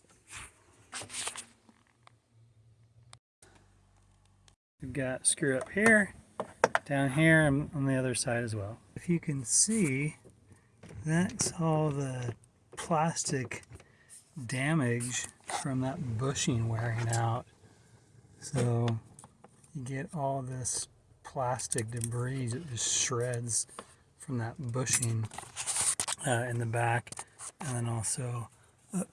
You've got a screw up here, down here, and on the other side as well. If you can see, that's all the plastic damage from that bushing wearing out. So you get all this plastic debris that just shreds from that bushing in the back, and then also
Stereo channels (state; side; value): identical; both; correlation 1.00